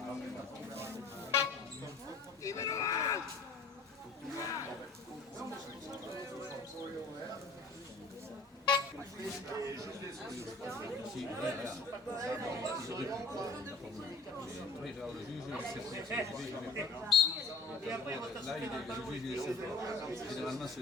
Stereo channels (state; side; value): quieter; right; 3.6 dB